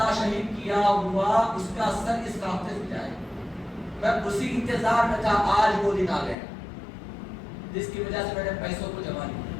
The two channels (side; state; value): right; drops out; at 6.4 s